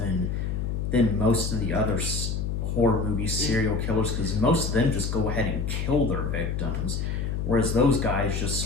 than most of the other horror movie serial killers, because most of them just go ahead and kill their victims, whereas those guys just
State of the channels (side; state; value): left; noise; hum, 1 dB below the sound